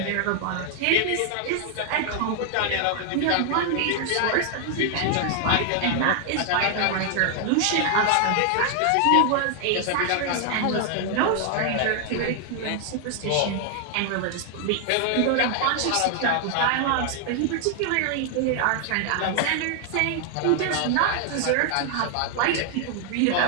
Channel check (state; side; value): different; both; correlation 0.00